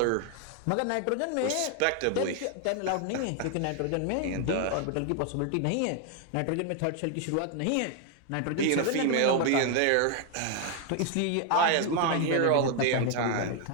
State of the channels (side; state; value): both; different; correlation 0.00